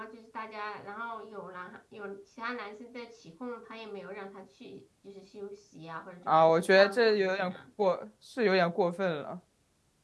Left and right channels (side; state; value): both; identical; correlation 1.00